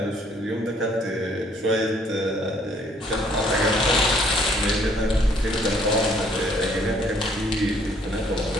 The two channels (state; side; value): normal; both; correlation 0.63